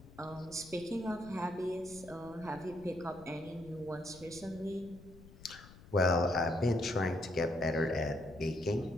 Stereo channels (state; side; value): noise; left; rumble, 20 dB below the sound